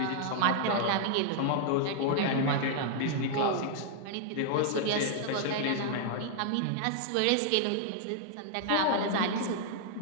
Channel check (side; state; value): both; different; correlation -0.01